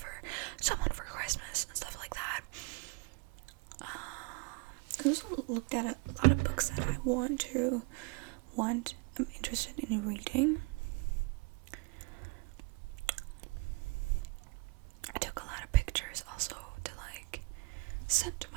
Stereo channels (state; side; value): quieter; left; 25.2 dB